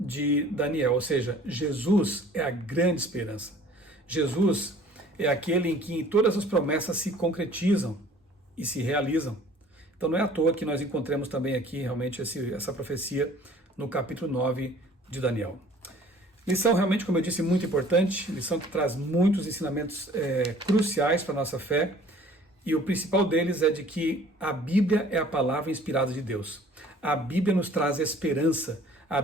Daniel, ou seja, Jesus é a grande esperança. Jesus é aquele em que todas as promessas se concretizam e se realizam. Então não é à toa que nós encontramos também aqui realmente essa profecia no capítulo 9 de Daniel. Lição realmente, como eu disse, muito importante, lição que traz muitos ensinamentos cruciais para a nossa fé, e o principal deles é de que a Bíblia é a palavra inspirada de Deus. A Bíblia nos traz esperança, a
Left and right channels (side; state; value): both; normal; correlation 0.51